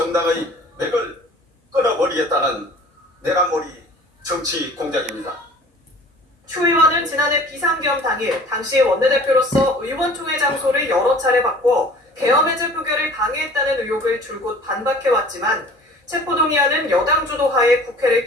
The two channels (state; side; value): normal; both; correlation 0.47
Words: 맥을 끊어버리겠다는 내란몰이 정치 공작입니다. 추 의원은 지난해 비상계엄 당일 당시 원내대표로서 의원총회 장소를 여러 차례 바꿔 계엄 해제 표결을 방해했다는 의혹을 줄곧 반박해왔지만 체포동의안은 여당 주도하에